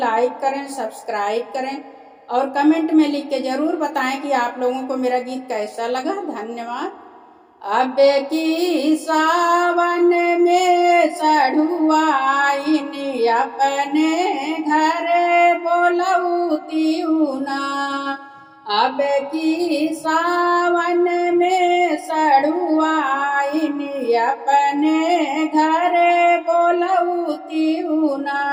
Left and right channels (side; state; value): both; identical; correlation 1.00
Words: करें, सब्सक्राइब करें और कमेंट में लिख के ज़रूर बताएं कि आप लोगों को मेरा गीत कैसा लगा। धन्यवाद। अब की सावन में सढ़ुआइन अपने घर बोलौती ना। अब की सावन में सढ़ुआइन अपने घर बोलौती ना।